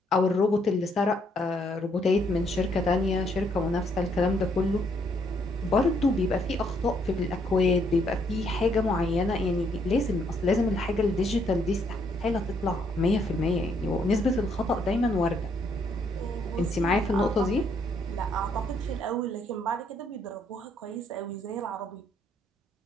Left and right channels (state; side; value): normal; both; correlation 0.70